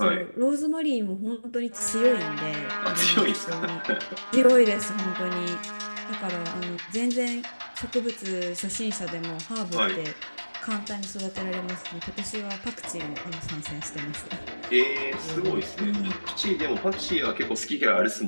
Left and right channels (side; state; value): both; inverted; correlation -1.00